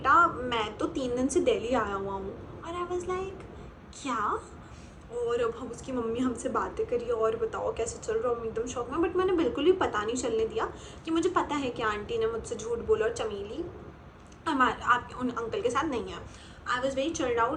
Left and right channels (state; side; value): identical; both; correlation 1.00